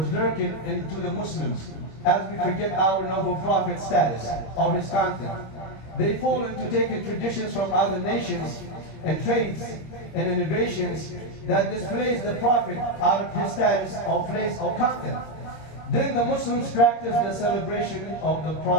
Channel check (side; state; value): right; late; 26 ms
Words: lurking into the Muslims as we forget our noble prophet status or his content. They fall into taking traditions from other nations and faiths and innovations that displays the prophet out of his status or place or content. Then the Muslims practice the celebration of the